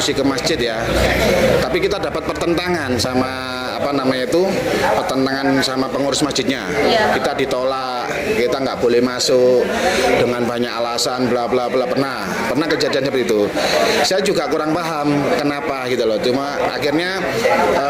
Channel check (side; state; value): both; identical; correlation 1.00